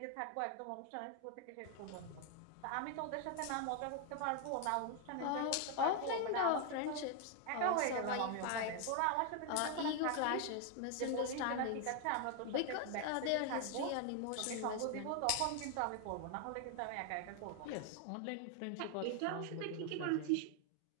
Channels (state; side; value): different; both; correlation 0.01